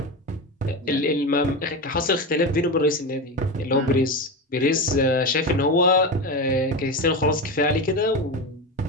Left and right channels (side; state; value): both; normal; correlation 0.20